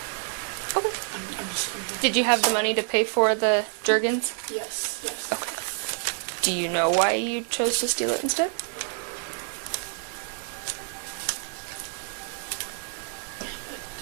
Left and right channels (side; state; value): left; silent; 60 dB below the other